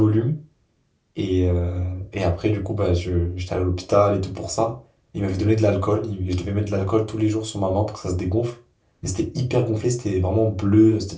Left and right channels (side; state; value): both; identical; correlation 1.00